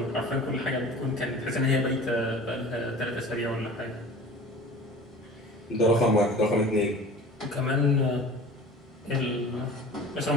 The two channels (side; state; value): both; normal; correlation 0.41